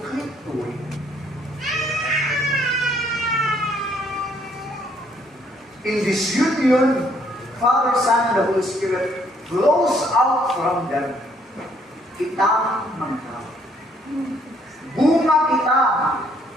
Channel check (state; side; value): normal; both; correlation 0.66